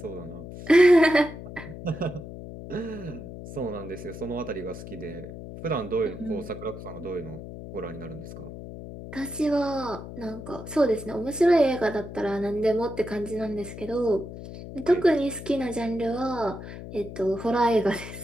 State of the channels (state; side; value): noise; left; hum, 11 dB below the sound